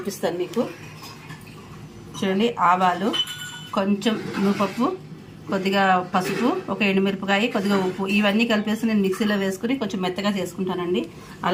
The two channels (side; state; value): both; identical; correlation 1.00